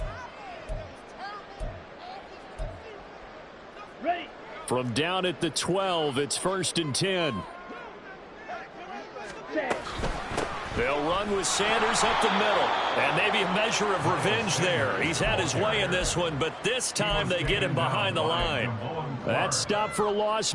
Ready. From down at the 12, it's 1st and 10. Set. They'll run with Sanders up the middle. And maybe a measure of revenge there. He's had his way in this one, but this time they get him behind the line. That stop for a loss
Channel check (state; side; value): identical; both; correlation 1.00